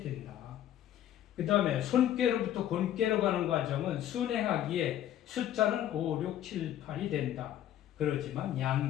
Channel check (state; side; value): quieter; right; 11.6 dB